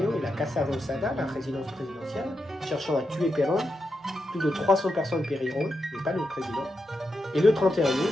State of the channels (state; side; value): normal; both; correlation 0.86